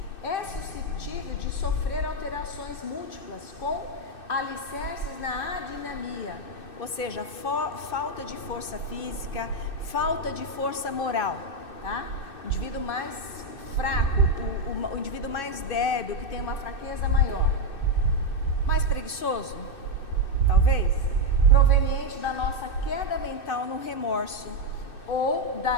é suscetível de sofrer alterações múltiplas com alicerces na adinamia, ou seja, falta de força física, falta de força moral, tá? O indivíduo mais fraco, o indivíduo mais débil, que tem uma fraqueza maior, mais preguiçoso, talvez, proveniente da nossa queda mental no remorso ou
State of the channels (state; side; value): late; right; 2.6 ms